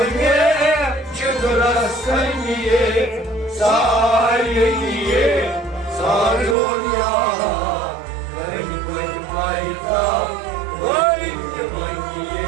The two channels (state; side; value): drops out; left; at 6.6 s